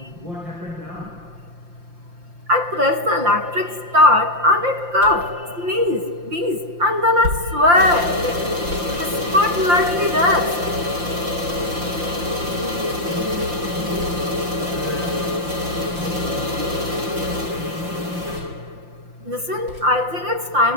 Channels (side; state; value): left; late; 5.7 ms